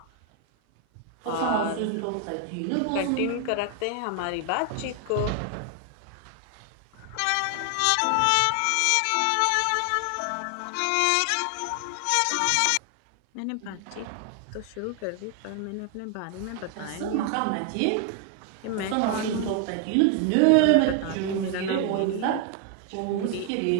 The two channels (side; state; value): both; different; correlation 0.00